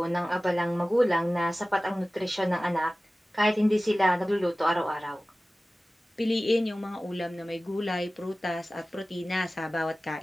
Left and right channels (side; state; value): both; normal; correlation 0.97